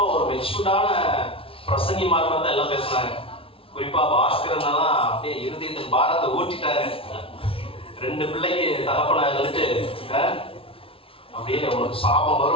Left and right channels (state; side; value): late; right; 0.26 ms